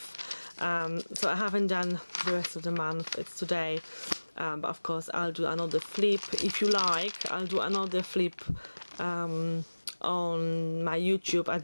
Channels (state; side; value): inverted; both; correlation -1.00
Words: So I haven't done the rest of the month, it's today, but of course I'll do another flip. If you like, I'll do another flip on my YouTube at